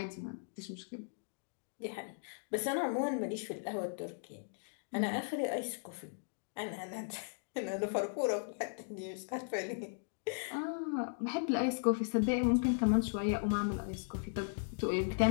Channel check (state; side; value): silent; right; digital silence